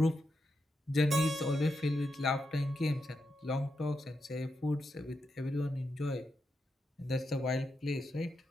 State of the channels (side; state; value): both; normal; correlation 0.85